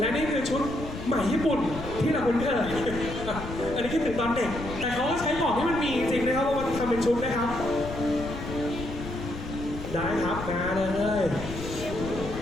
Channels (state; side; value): noise; left; rumble, 9 dB below the sound